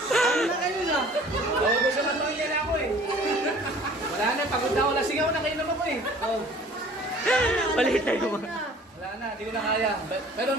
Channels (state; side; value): normal; both; correlation 0.50